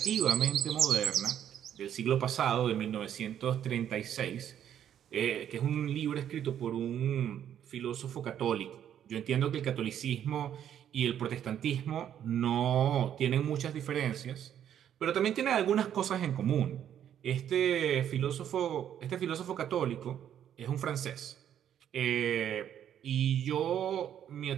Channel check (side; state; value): left; quieter; 9.9 dB